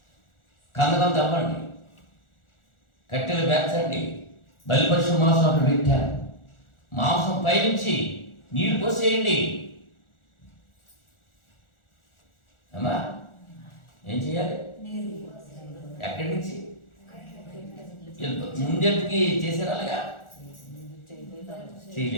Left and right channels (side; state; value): right; late; 1.4 ms